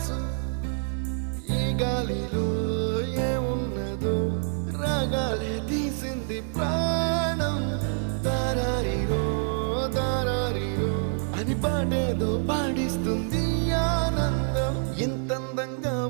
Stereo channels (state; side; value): silent; left; 60 dB below the other